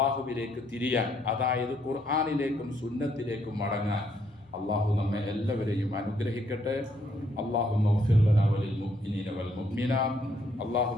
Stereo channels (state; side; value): normal; both; correlation 0.71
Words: തിരിയാൻ, അതായത് ഖുർആനിലേക്കും സുന്നത്തിലേക്കും മടങ്ങാൻ അള്ളാഹു നമ്മെ എല്ലാവരെയും അനുഗ്രഹിക്കട്ടെ. അല്ലാഹുമ്മ ഗ്ഫിർ ലനാ വലിൽ മുഅ്മിനീന വൽ മുഅ്മിനാത്ത്,